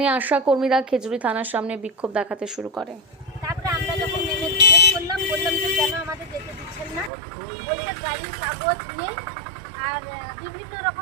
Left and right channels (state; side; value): drops out; left; at 7.1 s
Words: আশাকর্মীরা খেজুরি থানার সামনে বিক্ষোভ দেখাতে শুরু করে। তারপরে আমরা যখন নেমে জিজ্ঞেস করলাম, বললাম যে কেন আমাদের যেতে দিচ্ছেন না, বলছে গাড়ির কাগজ নেই আর বিভিন্ন